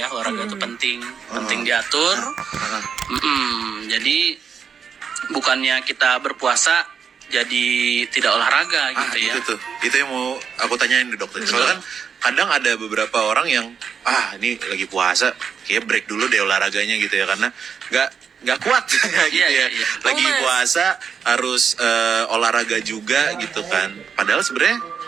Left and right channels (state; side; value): quieter; left; 6.8 dB